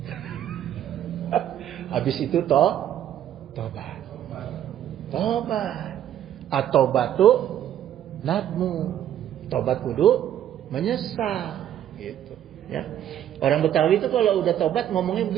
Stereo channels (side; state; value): left; quieter; 10.9 dB